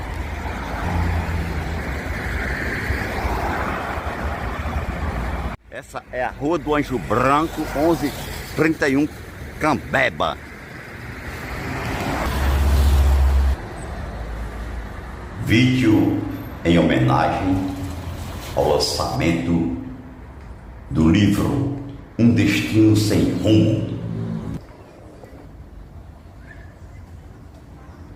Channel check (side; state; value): both; identical; correlation 1.00